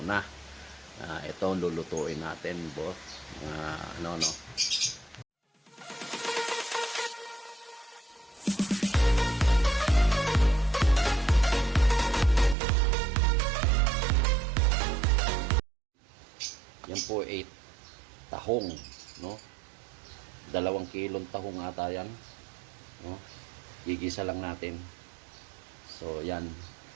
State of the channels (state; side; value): drops out; left; at 12.6 s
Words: Ito ang lulutuin natin, bo. No. Yan po 8 tahong, no? 2 kilong tahong ata yan, no? Gigisa lang natin. So, yan.